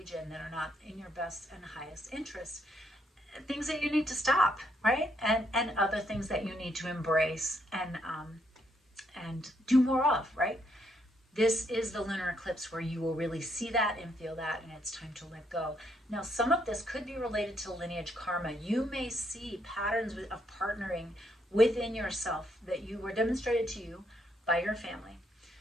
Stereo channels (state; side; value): normal; both; correlation 0.74